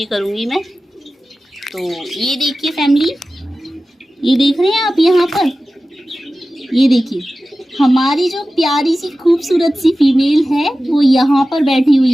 करूँगी मैं। तो ये देखिए फैमिली, ये देख रहे हैं आप यहाँ पर, ये देखिए हमारी जो प्यारी सी खूबसूरत सी फीमेल है वो यहाँ पर बैठी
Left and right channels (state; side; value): normal; both; correlation 0.95